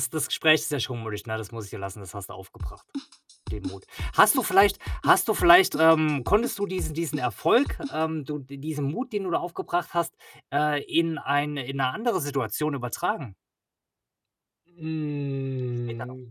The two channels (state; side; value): identical; both; correlation 1.00